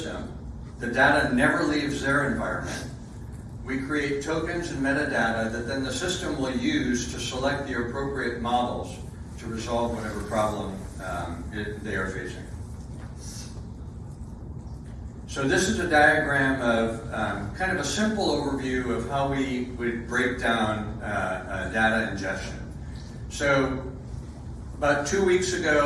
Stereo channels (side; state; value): both; identical; correlation 1.00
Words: The data never leaves their environment. We create tokens and metadata that then the system will use to select the appropriate models to resolve whatever problem they are facing. So this is a diagram of kind of a simple overview of how we would break down data ingestion. So about 2 weeks